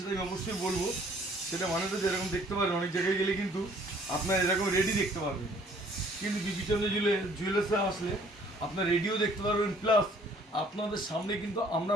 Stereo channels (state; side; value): normal; both; correlation 0.58